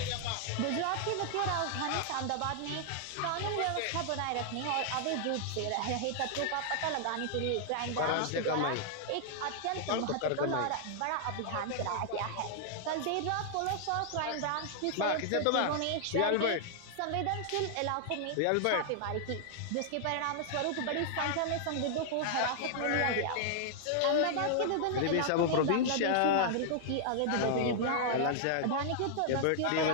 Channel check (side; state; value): both; different; correlation -0.01